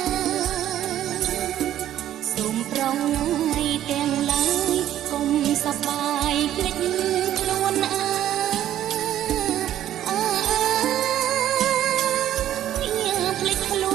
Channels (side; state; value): left; quieter; 12.0 dB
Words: សូមប្រងថ្ងៃទាំងឡាយកុំសប្បាយភ្លេចខ្លួនភ្លេចខ្ល